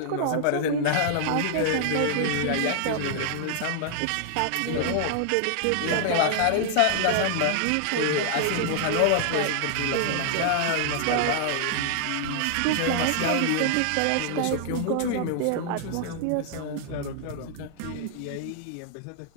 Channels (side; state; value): both; different; correlation 0.00